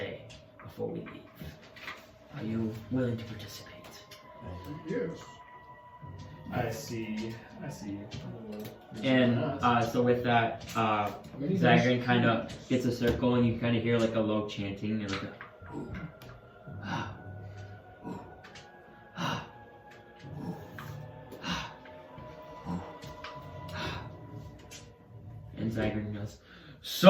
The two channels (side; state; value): both; identical; correlation 1.00